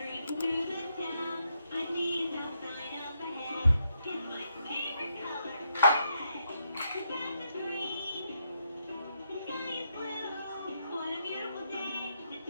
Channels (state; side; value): inverted; both; correlation -0.80